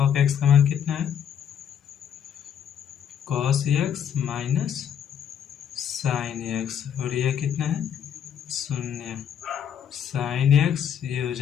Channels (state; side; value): quieter; right; 8.8 dB